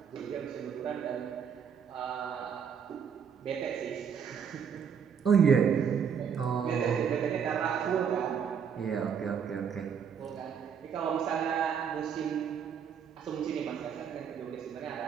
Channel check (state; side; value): quieter; left; 7.3 dB